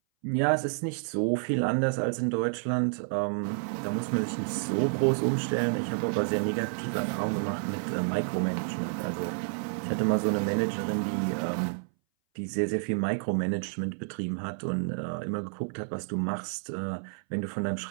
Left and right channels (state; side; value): silent; left; 58 dB below the other